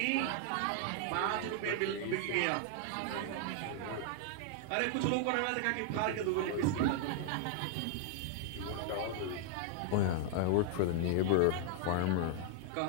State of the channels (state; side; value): different; both; correlation 0.00